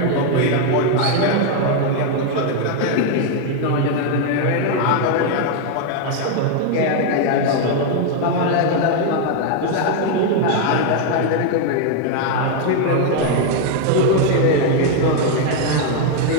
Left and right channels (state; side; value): different; both; correlation 0.01